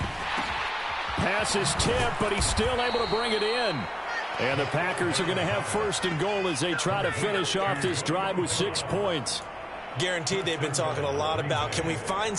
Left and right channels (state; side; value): identical; both; correlation 1.00